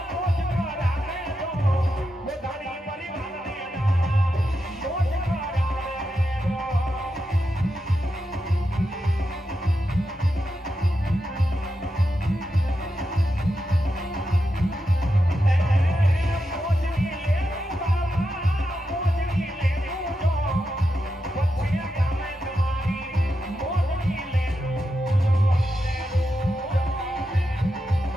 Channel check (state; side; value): normal; both; correlation 0.87